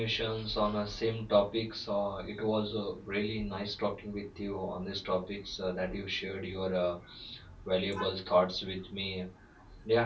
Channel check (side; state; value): both; identical; correlation 1.00